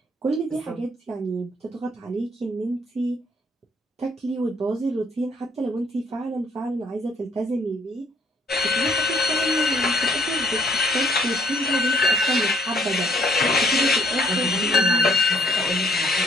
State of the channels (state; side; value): normal; both; correlation 0.64